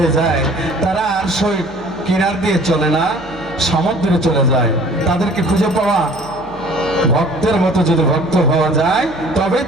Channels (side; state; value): left; noise; hum, 21 dB below the sound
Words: যায় তারা আর সই কিনার দিয়ে চলে না সমুদ্রে চলে যায় তাদেরকে খুঁজে পাওয়া ভক্তের মতো যদি ভক্ত হওয়া যায় তবে